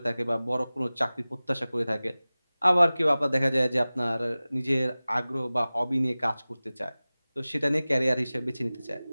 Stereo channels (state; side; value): inverted; both; correlation -0.98